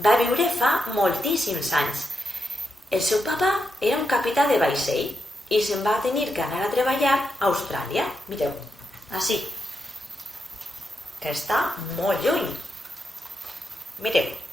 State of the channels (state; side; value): normal; both; correlation 0.84